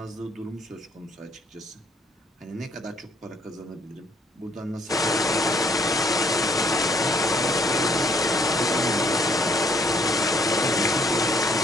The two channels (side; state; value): both; normal; correlation 0.64